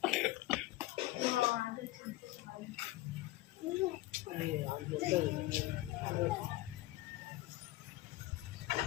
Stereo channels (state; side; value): quieter; right; 17.5 dB